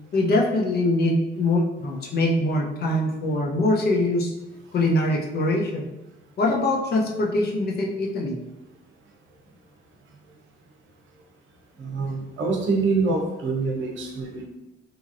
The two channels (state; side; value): normal; both; correlation 0.56